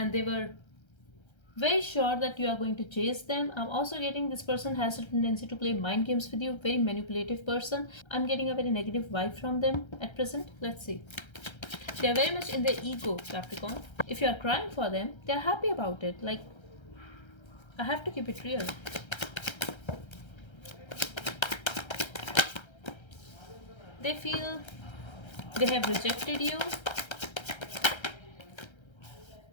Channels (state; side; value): late; right; 1.3 ms